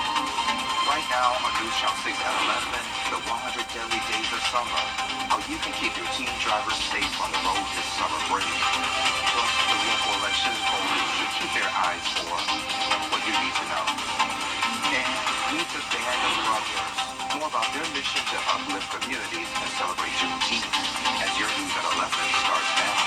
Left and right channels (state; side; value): identical; both; correlation 1.00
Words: Right now on News Channel 6 at 11, the 100 Deadly Days of Summer. How you can keep your teen drivers safe on the road this summer break. Plus, the local elections voters should keep their eyes for what you need to know. And meet the Band of Brothers. More about their mission to uplift communities and celebrate Juneteenth. As your news at 11 starts now.